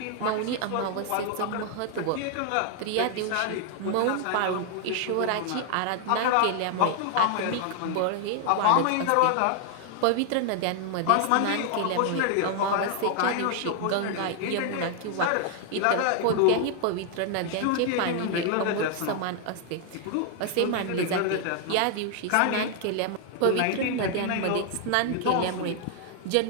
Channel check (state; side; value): different; both; correlation 0.00